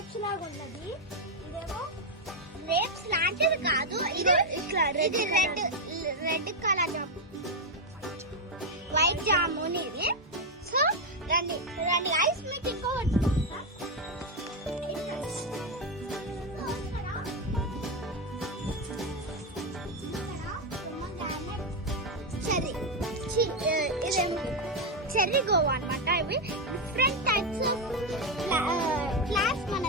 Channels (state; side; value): normal; both; correlation 0.05